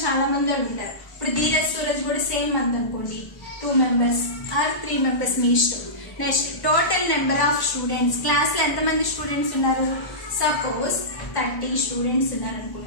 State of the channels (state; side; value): late; right; 1.1 ms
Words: చాలా మంది ఉంటారు. ఇప్పుడు ధీరజ్ సూరజ్ కూడా సేమ్ మంత్ అనుకోండి, 2 members ఆర్ 3 members మీ ఇష్టం. Next total number of students, class లో ఎంతమంది స్టూడెంట్స్ ఉన్నారు, సపోజ్ 30 స్టూడెంట్స్ ఉన్నారు